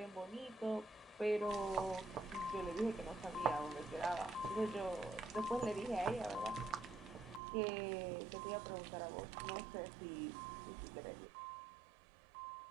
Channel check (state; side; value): drops out; left; at 7.4 s